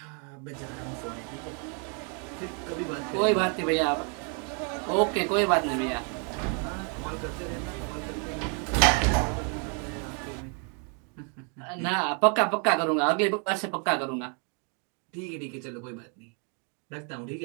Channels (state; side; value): quieter; left; 38.6 dB